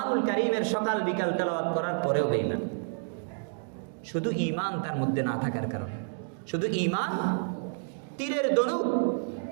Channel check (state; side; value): silent; left; digital silence